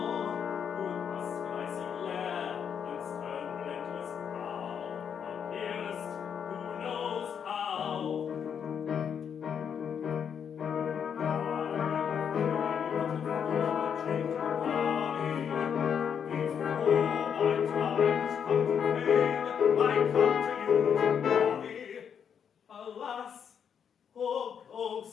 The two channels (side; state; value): right; quieter; 7.7 dB